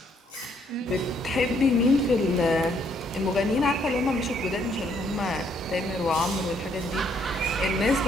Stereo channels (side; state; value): both; normal; correlation 0.69